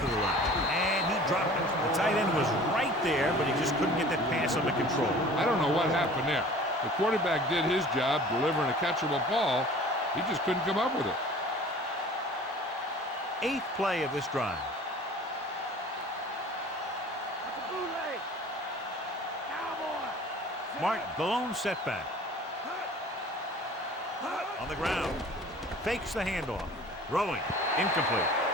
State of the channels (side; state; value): both; normal; correlation 0.45